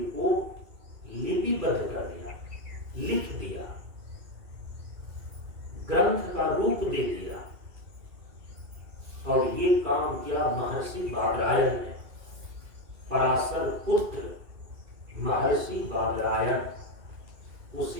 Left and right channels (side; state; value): left; late; 2.3 ms